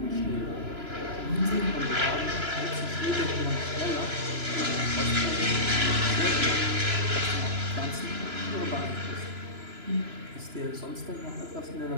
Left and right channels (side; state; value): left; late; 3.0 ms